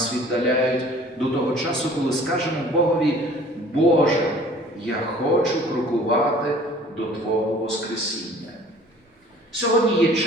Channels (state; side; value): normal; both; correlation 0.50